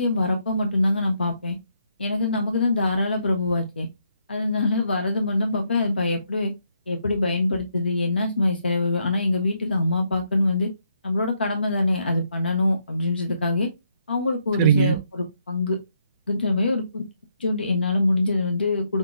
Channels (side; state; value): both; inverted; correlation -0.76